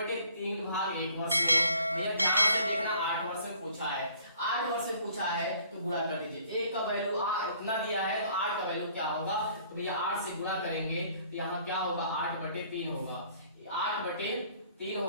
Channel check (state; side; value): inverted; both; correlation -0.57